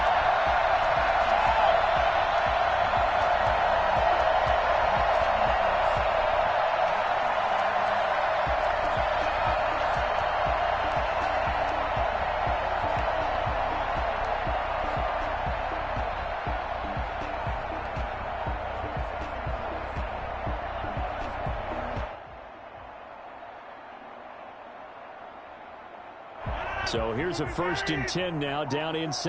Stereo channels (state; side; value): identical; both; correlation 1.00